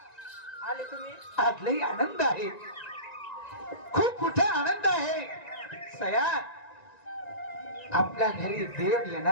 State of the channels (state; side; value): late; right; 1.9 ms